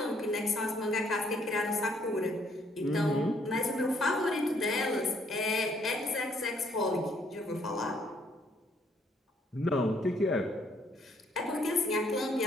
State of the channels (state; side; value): normal; both; correlation 0.68